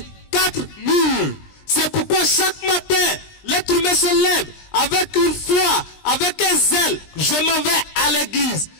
4 murs. C'est pourquoi chaque matin, l'être humain se lève avec une foi, avec un zèle. Je m'en vais à l'église.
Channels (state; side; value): late; right; 20 ms